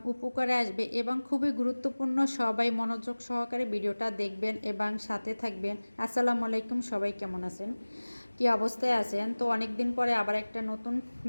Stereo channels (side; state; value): both; inverted; correlation -1.00